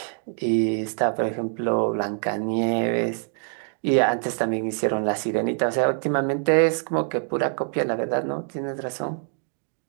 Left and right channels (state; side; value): silent; left; 62 dB below the other